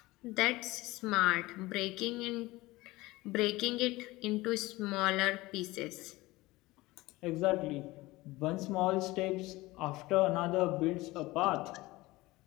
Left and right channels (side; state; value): right; quieter; 20.0 dB